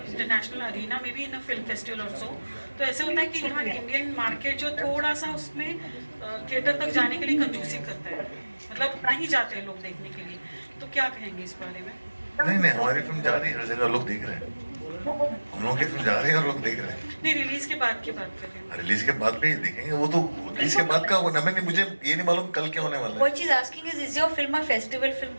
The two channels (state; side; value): inverted; both; correlation -1.00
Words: international arena, maybe in a film festival or so, तो ऐसे होता है कि यहाँ इंडियन मार्केट जो थोड़ा सा उसमें थिएटर तक जाने के लिए कंजूसी करता है, मतलब नहीं जाते हैं लोग देखने के लिए, तो क्या कहेंगे इस बारे में? नहीं हमारी फिल्म जा रही है, हर जगह लोग देख रहे हैं. हम लोग की फिल्म जा रही है और लोग देख रहे हैं. नहीं, रिलीज के बाद की बात कर रहे हैं. रिलीज के बाद भी देखेंगे, वो तो रिलीज के बाद का मुझे ये नहीं मालूम कल क्या होने वाला है. What she's asking is your film a festival film?